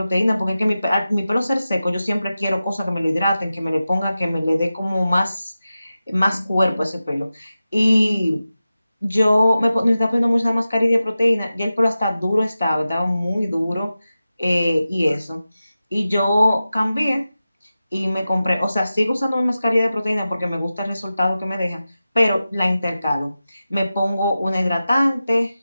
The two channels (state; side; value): inverted; both; correlation -0.94